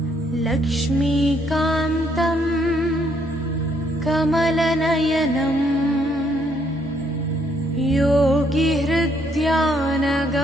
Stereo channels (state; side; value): normal; both; correlation 0.70